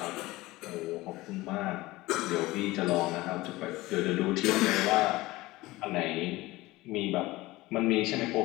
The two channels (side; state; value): right; quieter; 19.4 dB